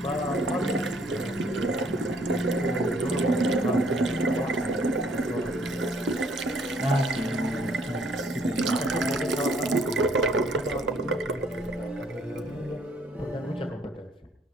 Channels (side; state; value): both; normal; correlation 0.63